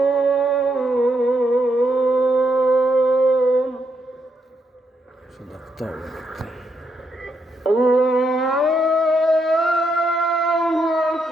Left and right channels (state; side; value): normal; both; correlation 0.79